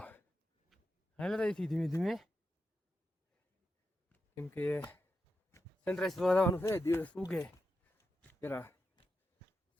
હાલ રહીથી ધીમે ધીમે, કેમ કે સનરાઈઝ જોવા જવાનું છે. દિવસ ઉગે પેલા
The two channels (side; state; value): both; normal; correlation 0.88